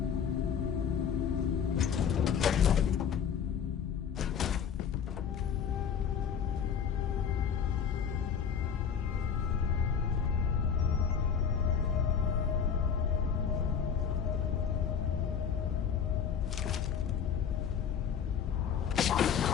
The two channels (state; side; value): quieter; right; 7.5 dB